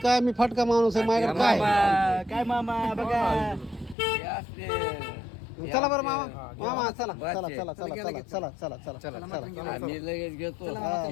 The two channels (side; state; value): right; drops out; at 4.0 s